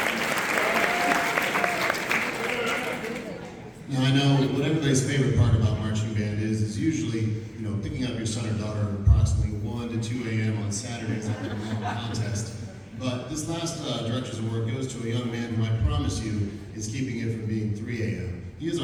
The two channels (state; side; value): identical; both; correlation 1.00